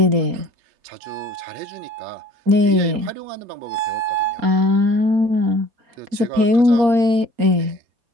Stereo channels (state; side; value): late; left; 4.3 ms